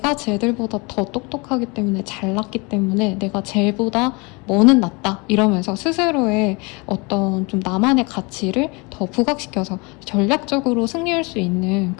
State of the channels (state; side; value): quieter; right; 28.3 dB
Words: 쟤들보다 더 똑똑하기 때문에 잘났기 때문에 내가 쟤보다 뭐는 낫다 이러면서 스스로의 어떤 좀 나만의 가치를 더 부각시켜서 전략적으로 승리할 수 있는